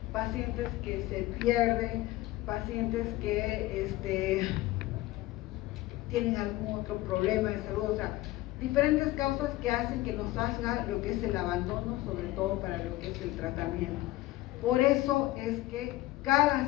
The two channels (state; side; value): quieter; right; 17.5 dB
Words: pacientes que se pierden, pacientes que tienen algún otro problema de salud, o sea, diferentes causas que hacen que nos haga lo que es el abandono, sobre todo para lo que es el tratamiento. Por eso es que